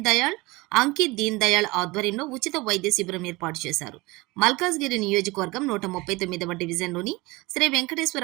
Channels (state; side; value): quieter; left; 22.6 dB